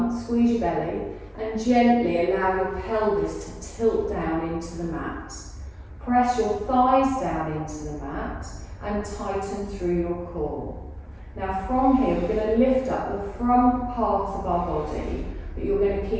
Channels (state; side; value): identical; both; correlation 1.00